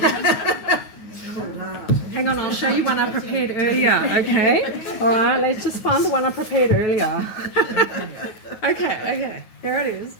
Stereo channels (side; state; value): right; late; 9.5 ms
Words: Hang on, I'll show you one I prepared earlier, okay? All right, let's just find the one I prepared earlier. Okay, here it is.